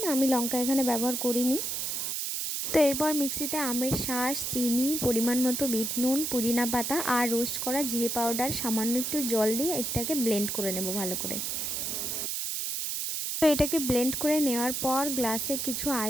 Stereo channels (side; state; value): right; noise; hiss, 2 dB below the sound